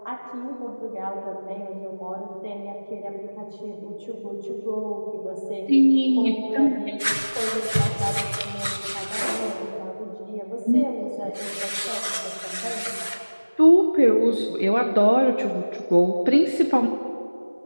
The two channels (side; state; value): both; inverted; correlation -1.00